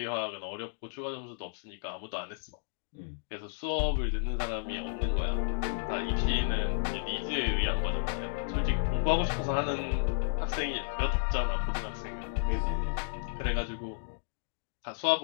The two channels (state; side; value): silent; right; digital silence